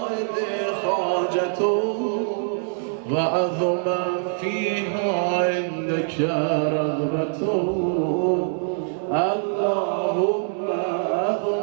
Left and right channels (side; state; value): left; silent; 63 dB below the other